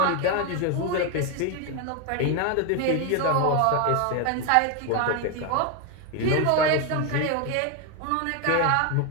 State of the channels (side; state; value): both; different; correlation 0.02